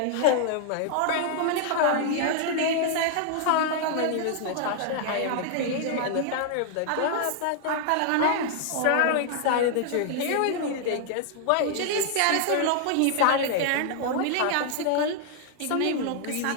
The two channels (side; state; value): both; different; correlation 0.00